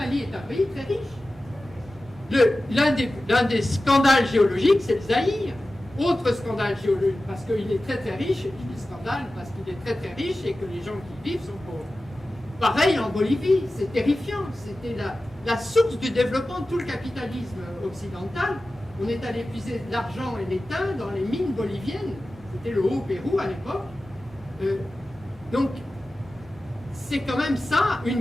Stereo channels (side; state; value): both; normal; correlation 0.95